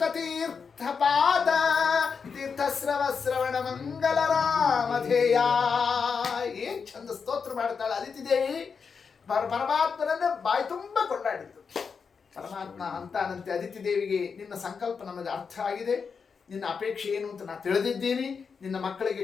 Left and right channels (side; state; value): right; quieter; 5.7 dB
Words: ತೀರ್ಥಪಾದ ತೀರ್ಥಸ್ರವ ಶ್ರವಣ ಮಂಗಲ ರಾಮಧೇಯ. ಏನ್ ಚಂದ ಸ್ತೋತ್ರ ಮಾಡ್ತಾಳೆ ಅದಿತಿ ದೇವಿ. ಪರಮಾತ್ಮನನ್ನ ಬಾಯಿ ತುಂಬ ಕೊಂಡಾಡಿದ್ದು. ಪರಮಾತ್ಮ ಅಂತಾನಂತೆ ಅದಿತಿ ದೇವಿಗೆ, ನಿನ್ನ ಸಂಕಲ್ಪ ನಮಗೆ ಅರ್ಥ ಆಗಿದೆ, ನಿನ್ನ ಅಪೇಕ್ಷೆ ಏನು ಅಂತ ನಾನು ತಿಳಿದಿದ್ದೀನಿ, ನಿನ್ನ